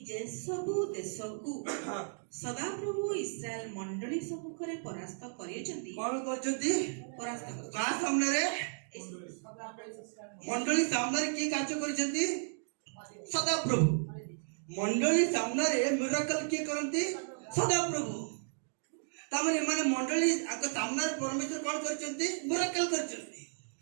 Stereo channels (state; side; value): silent; left; digital silence